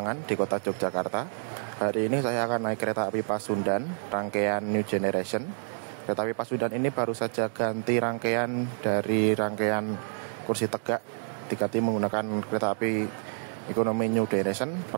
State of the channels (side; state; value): left; silent; digital silence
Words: di kota Yogyakarta. Hari ini saya akan naik kereta api Pasundan, rangkaian New Generation. Kereta api Pasundan ini baru saja ganti rangkaian dari rangkaian kursi tegak, diganti menggunakan kereta api ekonomi New Generation